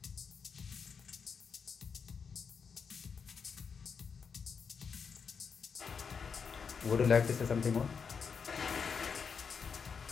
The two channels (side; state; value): right; quieter; 6.0 dB